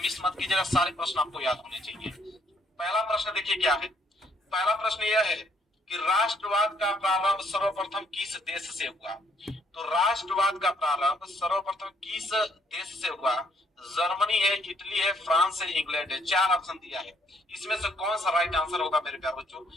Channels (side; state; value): both; normal; correlation 0.67